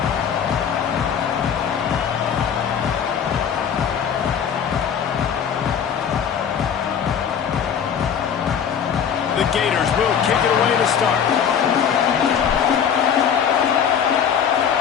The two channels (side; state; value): right; quieter; 7.8 dB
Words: The Gators will kick it away to start.